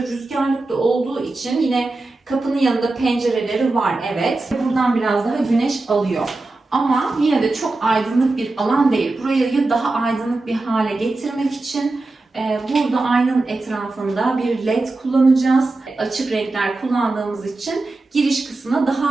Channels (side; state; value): left; quieter; 3.2 dB